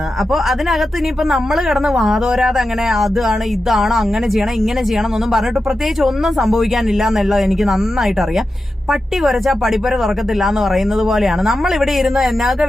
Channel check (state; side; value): normal; both; correlation 0.91